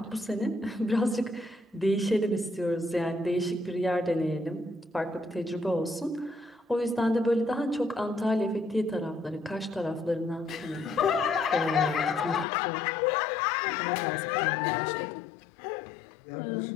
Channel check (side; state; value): right; drops out; at 12.5 s